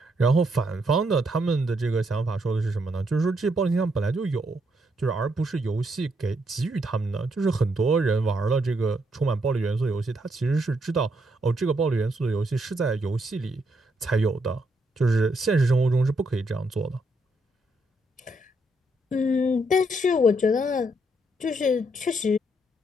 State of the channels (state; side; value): normal; both; correlation 0.76